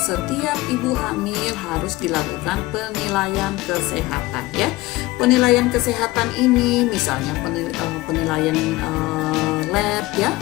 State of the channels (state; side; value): quieter; right; 19.4 dB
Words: ibu hamil harus dilakukan penilaian kesehatan ya. Penilaian kesehatan ini misalnya penilaian lab ya,